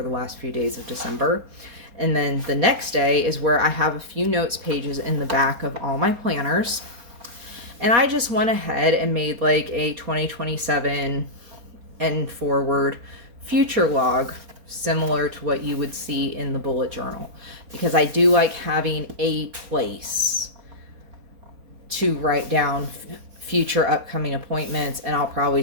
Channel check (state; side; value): late; left; 4.3 ms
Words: the last few days of December. And then the next day is where I have a few notes pages in the back of all my planners. And I just went ahead and made like a 2027 and forward future log, similar to what you would see in the bullet journal, because I do like having a place to write down future upcoming appointments. And I'll probably